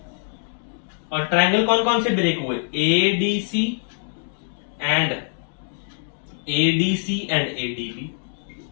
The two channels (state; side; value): silent; right; digital silence